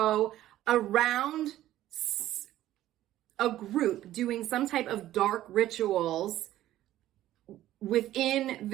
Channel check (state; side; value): quieter; left; 13.8 dB